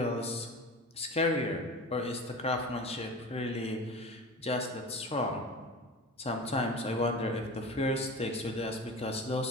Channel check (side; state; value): both; normal; correlation 0.33